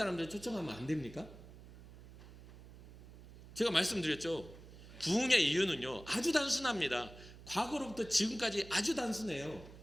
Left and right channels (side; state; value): right; noise; hum, 18 dB below the sound